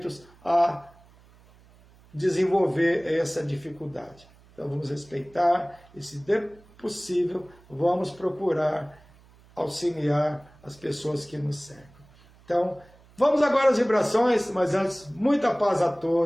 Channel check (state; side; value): noise; right; hum, 27 dB below the sound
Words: a desenvolver essa dificuldade. Então vamos respeitar e, se possível, vamos procurar auxiliar as pessoas que nos cercam. Então, vamos agora às vibrações, mas antes, muita paz a